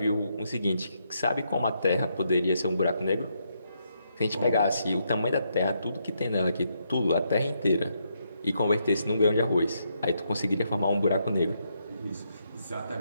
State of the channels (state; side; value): inverted; both; correlation -0.78